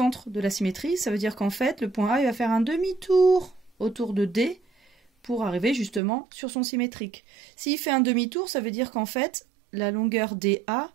de la symétrie. Ça veut dire qu'en fait, le point A il va faire un demi-tour autour de D, pour arriver justement sur son symétrique. S'il fait un demi-tour, ça veut dire qu'en fait, la longueur DA,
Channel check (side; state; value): left; drops out; at 6.0 s